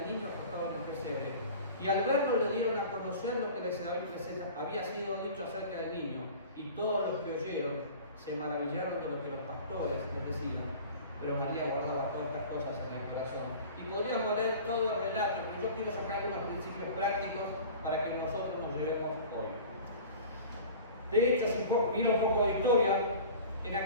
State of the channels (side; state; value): both; inverted; correlation -0.40